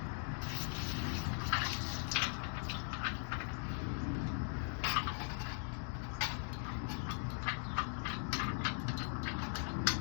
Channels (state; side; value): silent; right; 51 dB below the other